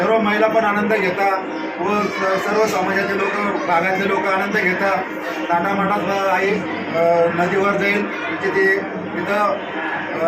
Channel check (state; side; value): identical; both; correlation 1.00